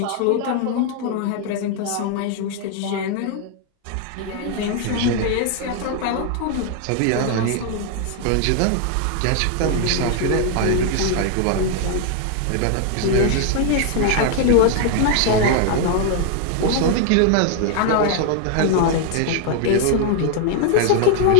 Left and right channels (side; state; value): both; different; correlation 0.00